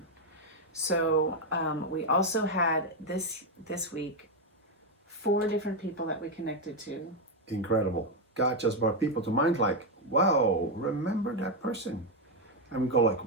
So we also had this week 4 different people that we connected to. Incredible. God just brought people to mind like, wow, remember that person. And we go like,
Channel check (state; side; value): normal; both; correlation 0.04